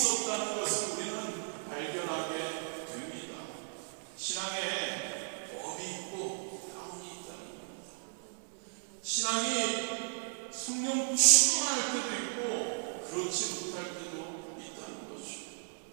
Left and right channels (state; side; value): silent; left; 54 dB below the other